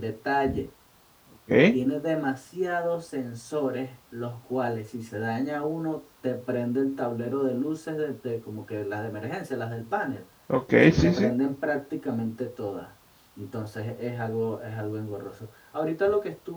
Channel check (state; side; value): identical; both; correlation 1.00